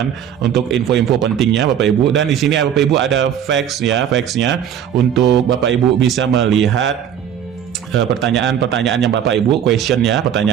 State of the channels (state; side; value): quieter; left; 9.2 dB